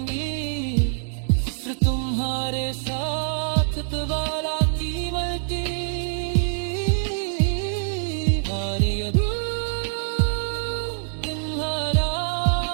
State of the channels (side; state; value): left; silent; digital silence